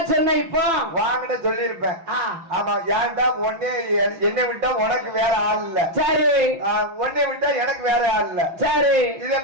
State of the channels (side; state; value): left; late; 6.1 ms